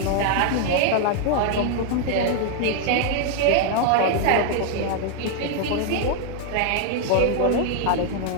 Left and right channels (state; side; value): different; both; correlation 0.00